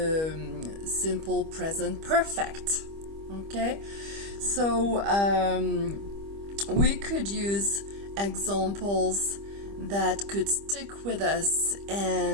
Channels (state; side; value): late; left; 25 ms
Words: simple present perfect. Okay? So, we could use examples that could stick with us